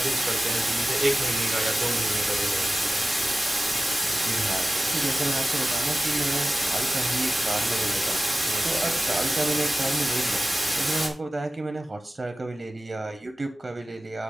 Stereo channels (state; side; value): normal; both; correlation 0.95